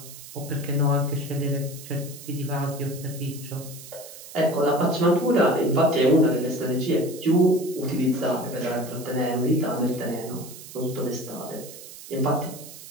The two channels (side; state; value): right; noise; hiss, 15 dB below the sound